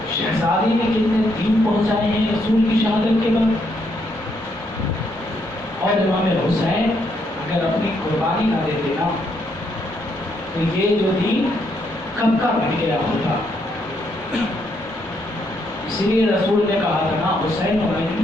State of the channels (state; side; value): normal; both; correlation 0.75